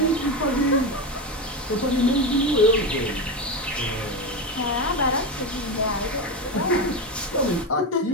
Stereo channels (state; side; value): normal; both; correlation 0.16